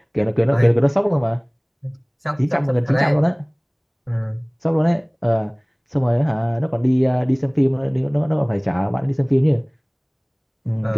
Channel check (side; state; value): both; identical; correlation 1.00